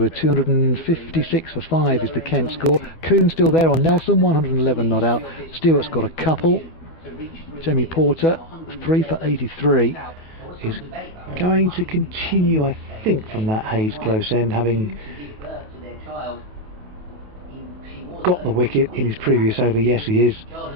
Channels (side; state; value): left; late; 28 ms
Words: 256 for 5 is the Kent score. Coon's still there on Nelson, 111 not out. Stewart's got a couple. Jamie Porter, 3 for 83. Is going to continue, I think, from that Hayes close end, having got the wicket in his previous over. Yes, he is,